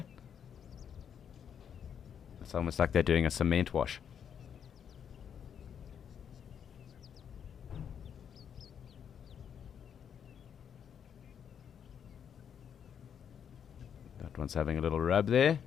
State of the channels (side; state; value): right; quieter; 8.1 dB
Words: It's almost like they're doing a cement wash. That one's having a little rub there.